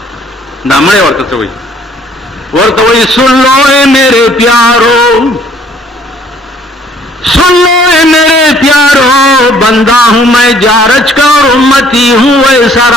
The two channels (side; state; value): both; normal; correlation 0.60